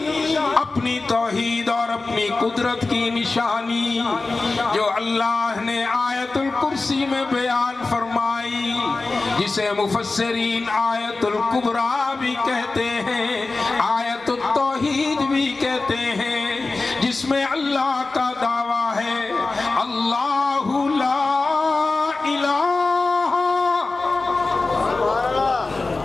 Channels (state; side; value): quieter; right; 3.5 dB